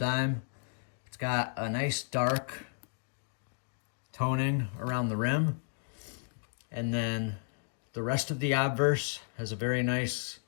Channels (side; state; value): right; silent; digital silence